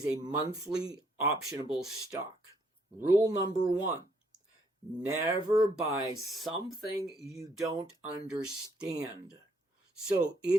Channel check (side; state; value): both; normal; correlation 0.69